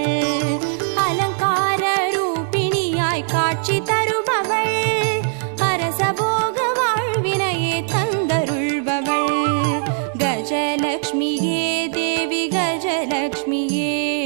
அலங்கார ரூபிணியாய் காட்சி தருபவள் அரசபோக வாழ்வினையே தந்தருள்பவள் கஜலக்ஷ்மியே தேவி கஜலக்ஷ்மியே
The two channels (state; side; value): silent; left; 66 dB below the other